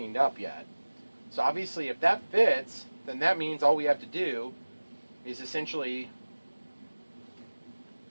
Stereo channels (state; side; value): inverted; both; correlation -1.00